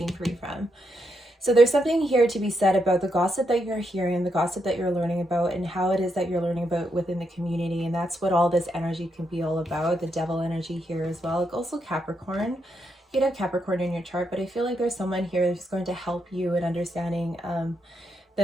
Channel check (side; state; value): both; normal; correlation 0.81